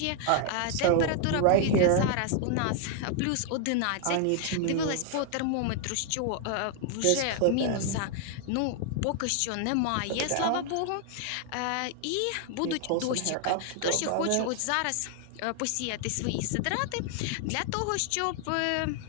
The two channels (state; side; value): different; both; correlation 0.00